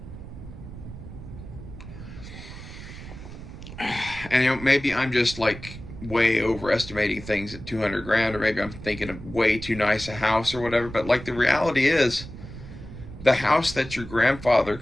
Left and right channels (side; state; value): right; noise; rumble, 13 dB below the sound